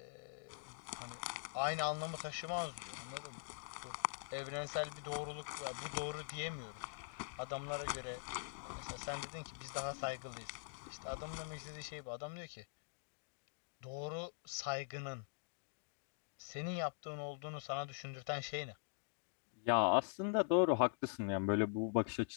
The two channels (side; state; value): right; silent; digital silence